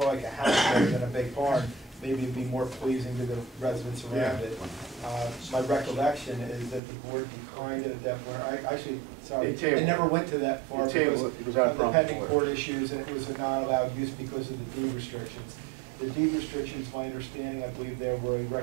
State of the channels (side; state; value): left; drops out; at 6.8 s